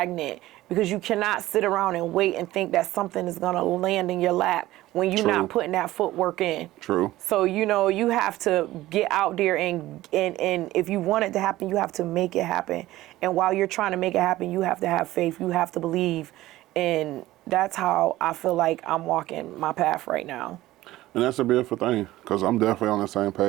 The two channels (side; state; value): left; quieter; 16.4 dB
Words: Because you cannot sit around and wait and think that something is going to land in your lap when you're not putting that footwork in. True. So, you know, you have to get out there and if you want it to happen, you have to make it happen. And while you're trying to make it happen, you have to have faith. You have to believe. And that's how I feel like I'm walking my path right now. And that's a beautiful thing, because I'm definitely on the same